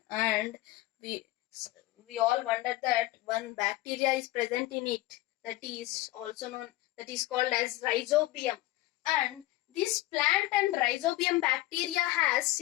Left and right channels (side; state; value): right; quieter; 17.7 dB